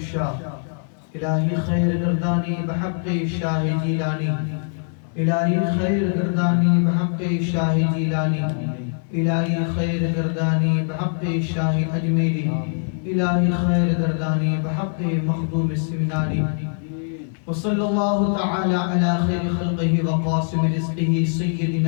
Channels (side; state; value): right; silent; 60 dB below the other